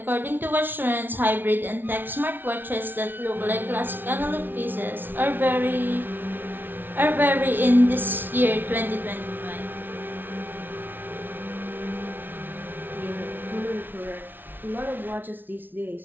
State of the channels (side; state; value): left; late; 0.096 ms